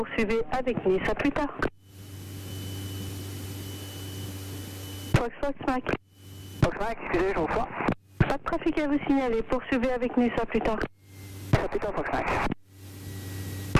avec Nice, à plus tard. Foxtrot Mike. Foxtrot Mike, excusez, je vous reçois. Pas de trafic à vous signaler. Poursuivez avec Nice, à plus tard. À plus tard, Foxtrot Mike.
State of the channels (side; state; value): both; identical; correlation 1.00